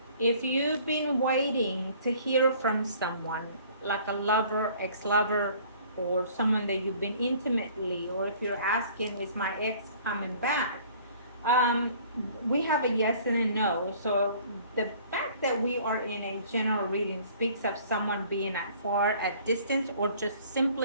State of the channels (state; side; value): inverted; both; correlation -0.53